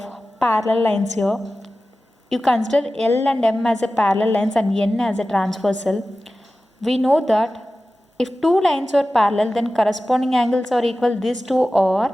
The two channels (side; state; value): both; normal; correlation 0.95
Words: parallel lines here. You consider L and M as a parallel lines and N as a transversal. We know that if two lines are parallel, then corresponding angles are equal. These two